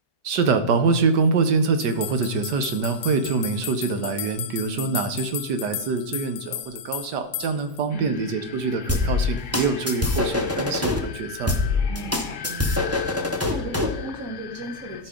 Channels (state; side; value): normal; both; correlation -0.09